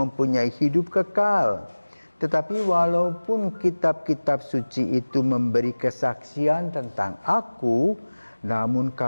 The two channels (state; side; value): inverted; both; correlation -1.00